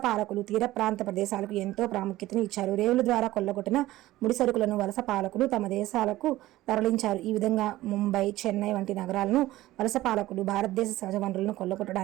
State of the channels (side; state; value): left; quieter; 16.4 dB